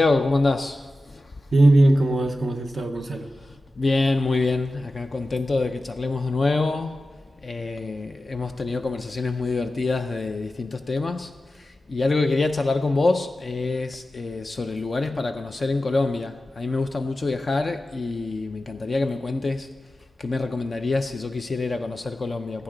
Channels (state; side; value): normal; both; correlation 0.94